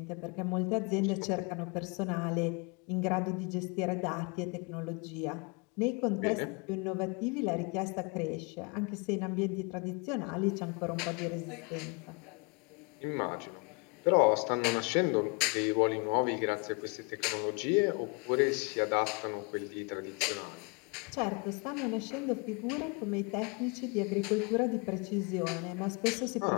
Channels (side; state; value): right; quieter; 31.9 dB